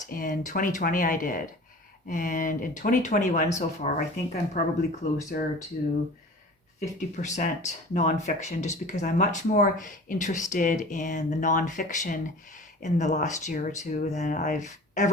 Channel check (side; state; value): both; normal; correlation 0.40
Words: in 2020 I did. And in 2021 so far, I think I'm probably closer to 50% nonfiction, just because I'm much more interested in the nonfiction in the last year or two than I've